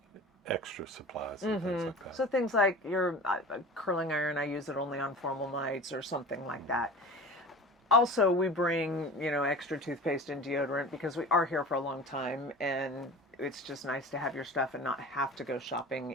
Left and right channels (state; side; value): normal; both; correlation 0.37